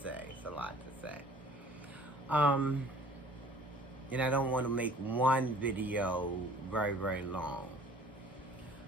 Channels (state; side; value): normal; both; correlation 0.51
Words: say. It's a lot to say. Um, and I don't want to make one video very, very long.